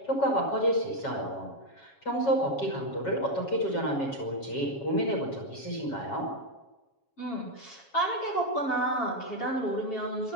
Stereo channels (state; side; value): late; right; 7.3 ms